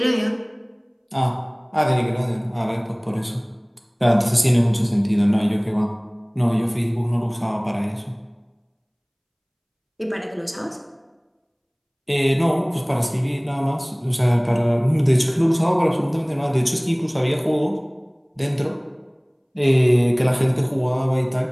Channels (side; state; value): both; identical; correlation 1.00